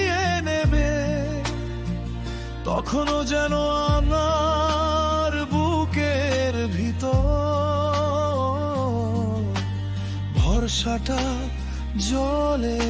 নেবে, তখনও যেন আমার বুকের ভিতর ভরসাটা জ্বলে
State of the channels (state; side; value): identical; both; correlation 1.00